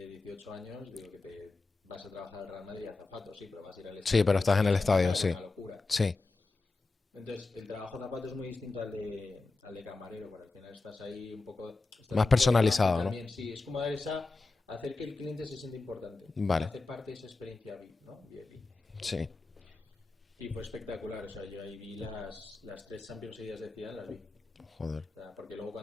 18 años, digo que te vas a trabajar al Real Madrid y azafato, sí, pero vas a ir al Sí, estadio pero y estás eso en es el una estadio, sí. una locura. Sí. Entonces, el trabajo zapato es muy distinto al de camarero, porque al final estás ahí estás Más un poco debajo y personalizado, ¿no? también, sí, es como hacer que el cliente se sienta importante, Vale. hacer parte de esa experiencia VIP, ¿no? VIP. Sí. Y fue espectacular, o sea, yo ahí vi las tres Champions seguidas de Zidane, las vi. Joder. O sea, porque luego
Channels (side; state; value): right; quieter; 3.6 dB